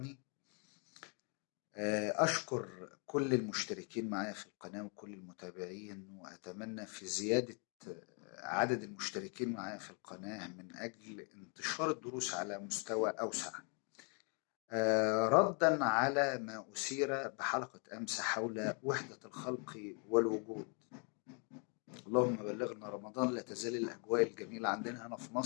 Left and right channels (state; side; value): quieter; right; 37.5 dB